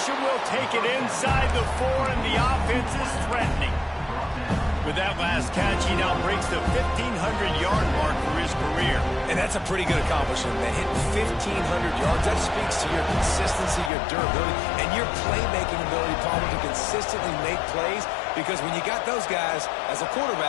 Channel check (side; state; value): right; drops out; at 13.9 s